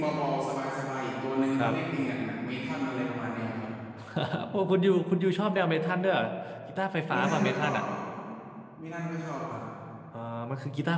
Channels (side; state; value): both; identical; correlation 1.00